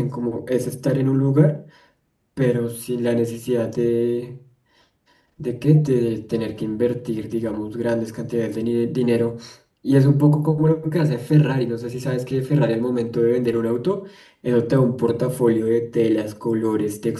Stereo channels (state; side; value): identical; both; correlation 1.00